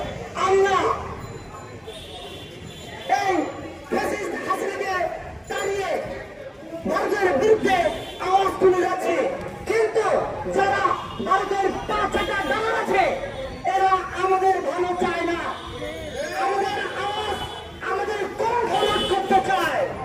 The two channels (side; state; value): both; identical; correlation 1.00